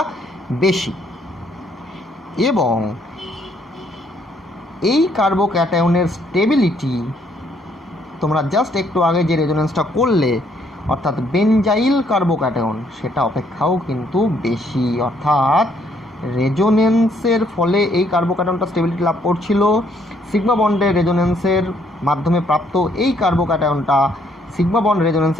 বেশি। এবং এই কার্বো ক্যাটায়নের স্টেবিলিটি তোমরা জাস্ট একটু আগে যে রেজোনেন্সটা করলে, অর্থাৎ বেনজাইল কার্বো ক্যাটায়ন, সেটা অপেক্ষাও কিন্তু বেশি। অর্থাৎ রেজোনেন্সের ফলে এই কার্বো ক্যাটায়নটা স্টেবিলিটি লাভ করছিল, সিগমা বন্ডের রেজোনেন্সের মাধ্যমে প্রাপ্ত এই কার্বো ক্যাটায়নটা সিগমা বন্ড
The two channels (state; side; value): normal; both; correlation 0.68